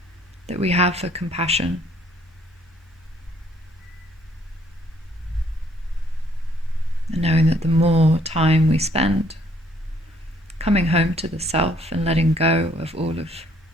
that we have for compassion. And knowing that the more time we spend coming home to the self and letting go of all of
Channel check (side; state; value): both; normal; correlation 0.64